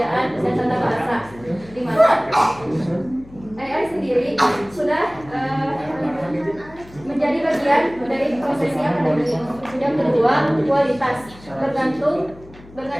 dan tata bahasa, di mana AI sendiri sudah menjadi bagian dari prosesi akademik. Yang kedua, kualitas bergantung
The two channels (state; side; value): noise; left; hum, 21 dB below the sound